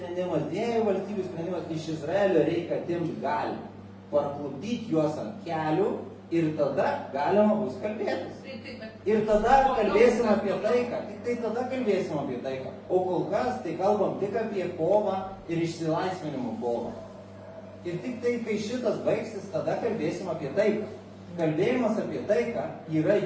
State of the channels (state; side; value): identical; both; correlation 1.00